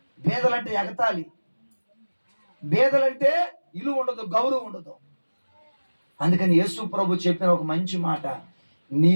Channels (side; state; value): both; inverted; correlation -1.00